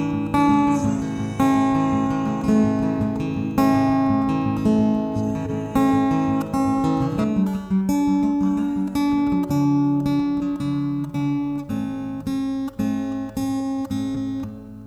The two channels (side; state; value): both; identical; correlation 1.00